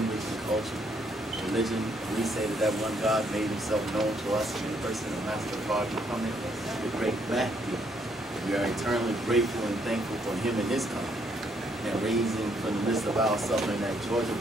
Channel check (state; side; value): normal; both; correlation 0.71